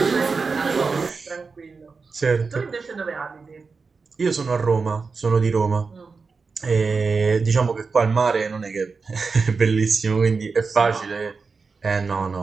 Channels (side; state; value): left; quieter; 4.7 dB